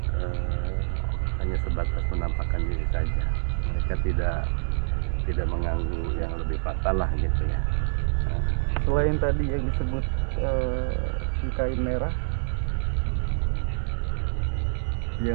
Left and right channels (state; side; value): silent; left; digital silence